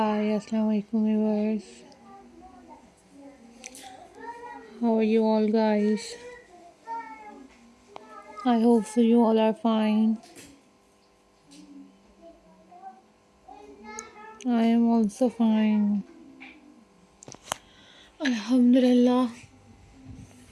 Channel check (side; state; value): both; identical; correlation 1.00